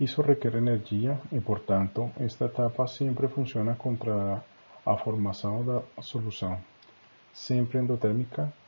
requer energia e, portanto, esta etapa sempre funciona contra a formação da solução, sempre endotérmica,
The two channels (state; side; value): inverted; both; correlation -1.00